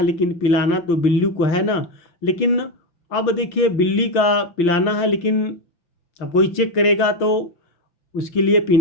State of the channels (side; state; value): right; late; 5.9 ms